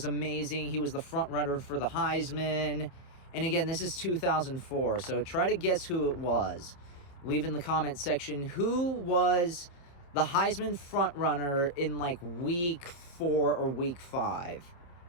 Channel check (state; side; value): late; right; 28 ms